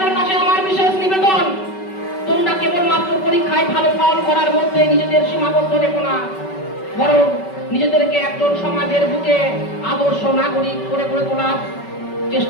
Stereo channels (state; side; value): late; right; 5.3 ms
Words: কাছে আমার বিশেষ নিবেদন, তোমরা কেবলমাত্র পরীক্ষায় ভালো ফল করার মধ্যে নিজেদের সীমাবদ্ধ রেখো না, বরং নিজেদেরকে একজন সমাজের বুকে আদর্শ নাগরিক করে গড়ে তোলার